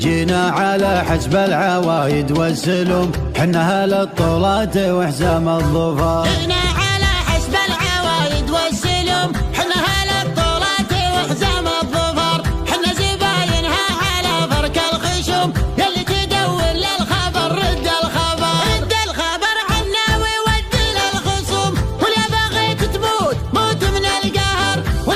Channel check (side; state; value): both; identical; correlation 1.00